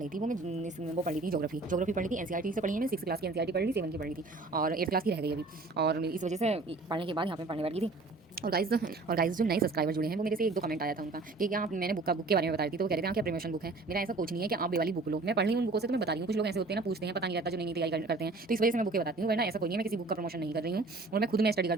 थी वो पढ़ रही थी ज्योग्राफी पढ़ी थी। एनसीईआरटी से पढ़ी है, मैं 6 क्लास की एनसीईआरटी पढ़ ली, 7 की पढ़ी थी और 8 क्लास की रह गई अभी। और इस वजह से पढ़ने के बाद यहाँ पे पढ़ने बैठी थी। और गाइस जो नए सब्सक्राइबर जुड़े हैं वो मेरे से 1-2 कमेंट आया था उनका कि क्या आप, मैंने बुक के बारे में बता रही थी तो वो कह रहे थे हाँ क्या प्रमोशन बुक है। मेरा ऐसा कुछ नहीं है कि आप ये वाली बुक लो, मैं पढ़ रही हूँ उन बुकों से तो मैं बता रही हूँ। कुछ लोग ऐसे होते हैं ना, पूछते हैं, पता नहीं रहता जो नई तैयारी करते हैं, तो इस वजह से मैं बुकें बताती हूँ, वरना ऐसा कोई नहीं है, मैं किसी बुक का प्रमोशन नहीं कर रही हूँ। और मैं खुद में स्टडी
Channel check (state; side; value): quieter; left; 3.4 dB